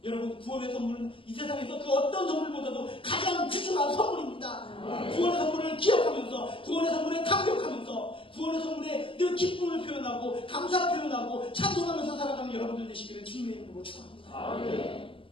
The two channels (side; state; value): right; late; 0.25 ms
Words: 여러분, 구원의 선물은 이 세상에서 그 어떤 선물보다도 가장 귀중한 선물입니다. 구원의 선물을 기억하면서, 구원의 선물에 감격하면서, 구원의 선물에 늘 기쁨을 표현하고 감사 표현하고 찬송하면서 살아가는 여러분들 되시기를 주님의 이름으로 축원합니다.